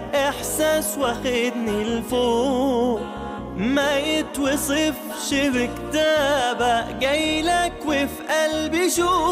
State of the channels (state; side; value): identical; both; correlation 1.00